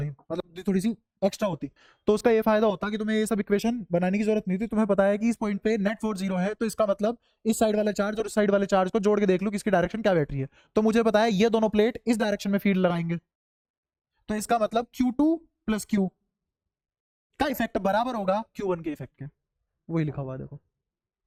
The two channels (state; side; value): identical; both; correlation 1.00